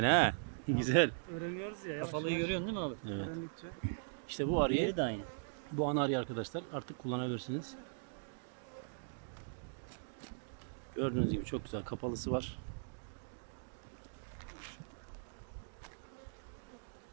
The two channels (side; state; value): left; silent; digital silence